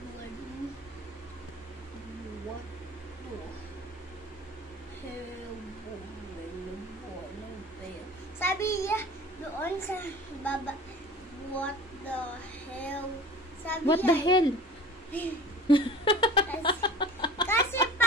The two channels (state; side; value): normal; both; correlation 0.41